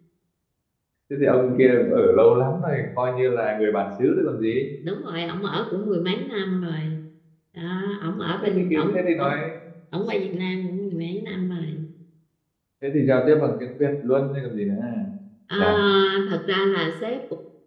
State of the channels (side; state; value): both; identical; correlation 1.00